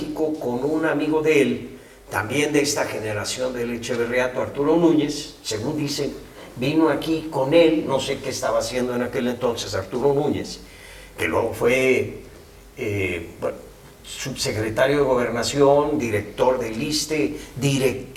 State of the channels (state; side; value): identical; both; correlation 1.00